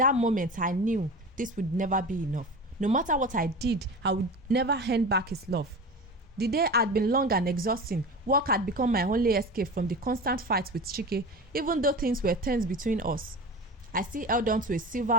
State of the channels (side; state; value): both; normal; correlation 0.31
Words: moment, I knew this would never be enough. No matter what I did, I would never hand back his love. The day had been long and exhausting. Work had become my only escape from the constant fights with Chike, even though things were tense between us. I still held on to a sliver